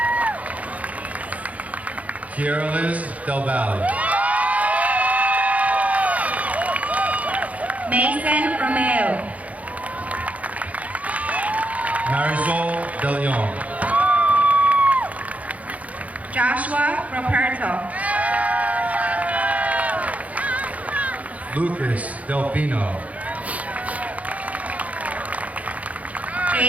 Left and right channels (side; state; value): left; late; 0.069 ms